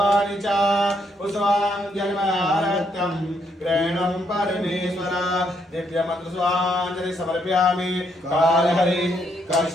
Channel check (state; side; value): normal; both; correlation 0.74